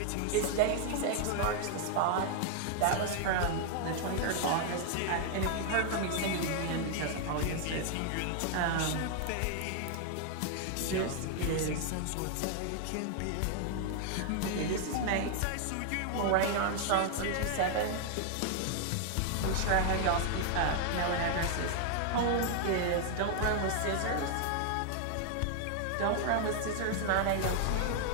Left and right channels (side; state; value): both; different; correlation 0.00